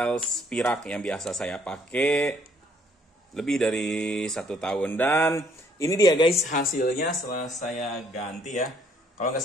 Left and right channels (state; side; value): normal; both; correlation 0.65